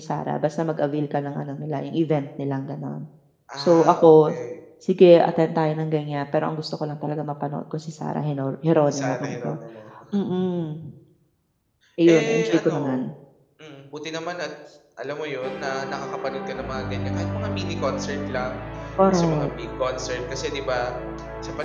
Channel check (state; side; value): identical; both; correlation 1.00